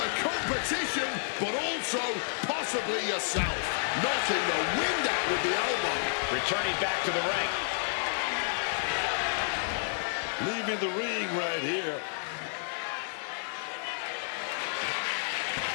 competition, but also possibly yourself. Knocking the wind out with the elbow. Returning back to the ring. Leaving the ring right here.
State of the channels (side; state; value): right; silent; digital silence